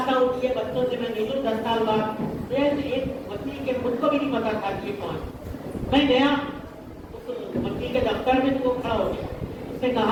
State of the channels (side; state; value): both; identical; correlation 1.00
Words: ہوں کہ یہ بچوں سے میں ملوں 10 سال بعد. ایک وکیل کے خود کو بھی نہیں پتا تھا کہ یہ کون. میں گیا اس وکیل کے دفتر میں, تو وہ کھڑا ہو گیا. اس نے